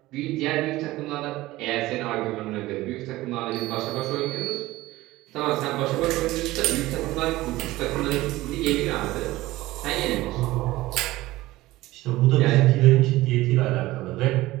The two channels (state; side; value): quieter; left; 17.8 dB